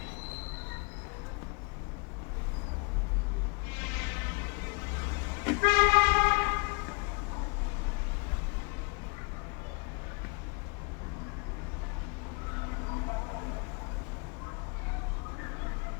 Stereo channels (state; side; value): quieter; right; 33.1 dB